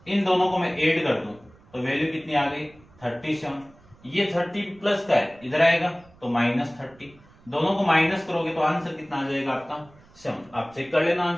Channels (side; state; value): right; noise; rumble, 27 dB below the sound